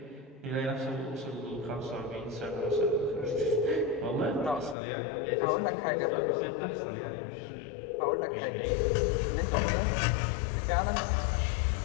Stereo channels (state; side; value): drops out; right; at 4.8 s